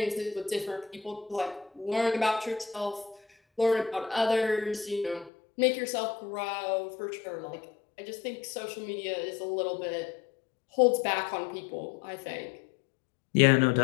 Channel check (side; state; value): right; drops out; at 5.3 s